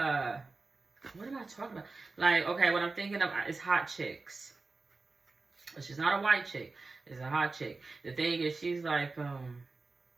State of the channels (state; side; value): quieter; left; 3.7 dB